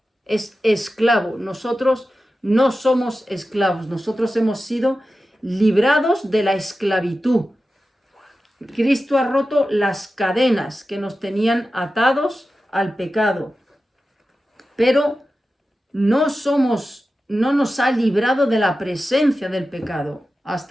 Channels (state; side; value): normal; both; correlation 0.93